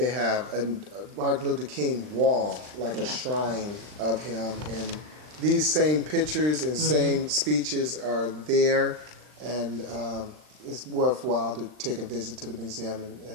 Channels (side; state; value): left; late; 39 ms